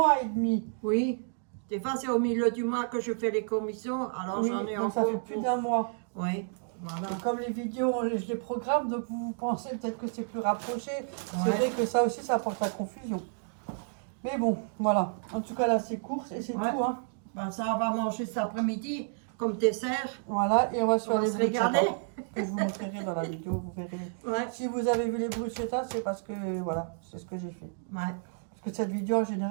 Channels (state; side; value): silent; left; digital silence